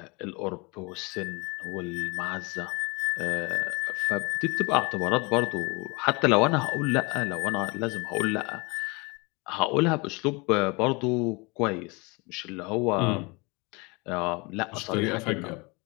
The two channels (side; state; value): right; quieter; 27.8 dB